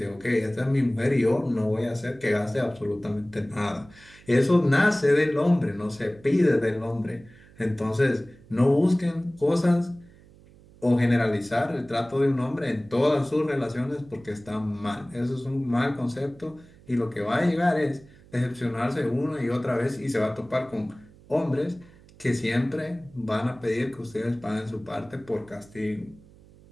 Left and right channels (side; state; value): right; noise; hum, 24 dB below the sound